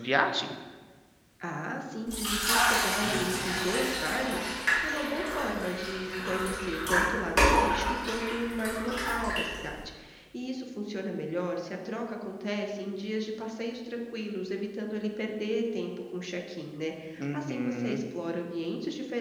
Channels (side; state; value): both; identical; correlation 1.00